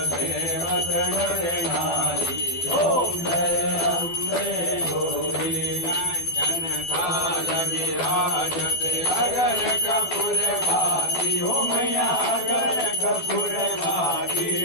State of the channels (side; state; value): right; late; 12 ms